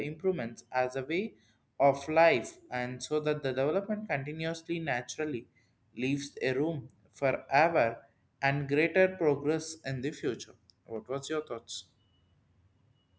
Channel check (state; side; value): identical; both; correlation 1.00